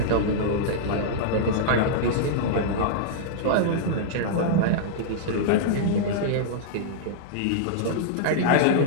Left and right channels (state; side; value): different; both; correlation -0.02